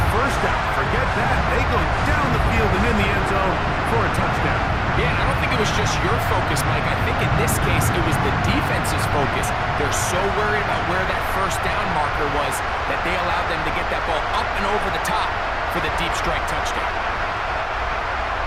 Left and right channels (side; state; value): both; identical; correlation 1.00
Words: 1st down. Forget that. They go down the field and in the end zone for a touchdown. Yeah, I don't think it was just your focus, Mike. I think in this case, it was the defense's focus. They're so worried about where that 1st down marker was that they allowed them to get that ball up and over the top for the deep strike touchdown.